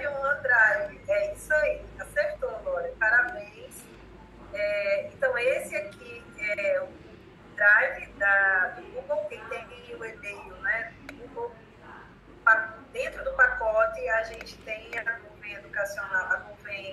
e o OneDrive. É isso aí, acertou, Lauren, parabéns. Então, esse aqui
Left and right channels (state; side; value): identical; both; correlation 1.00